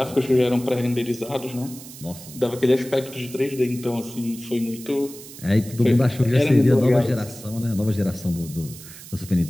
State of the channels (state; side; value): noise; right; hiss, 16 dB below the sound